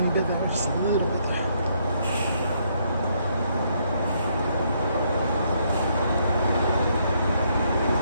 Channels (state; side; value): inverted; both; correlation -0.72